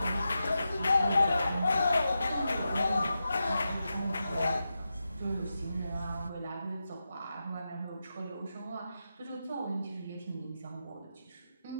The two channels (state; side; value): inverted; both; correlation -0.89